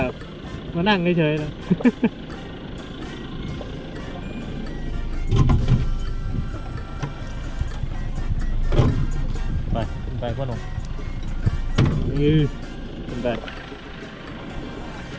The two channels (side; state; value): both; identical; correlation 1.00